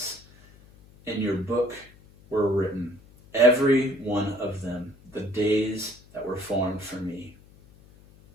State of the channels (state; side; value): noise; left; hum, 25 dB below the sound